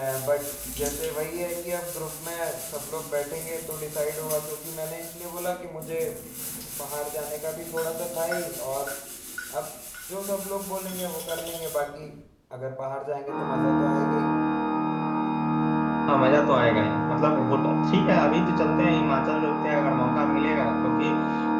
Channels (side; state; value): both; identical; correlation 1.00